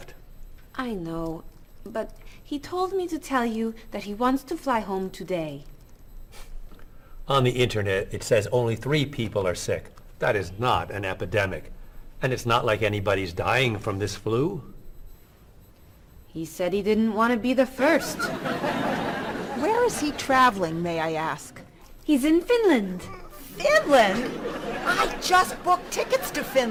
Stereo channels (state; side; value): identical; both; correlation 1.00